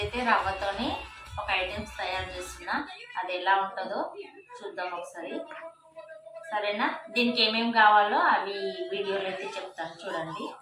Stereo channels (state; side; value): identical; both; correlation 1.00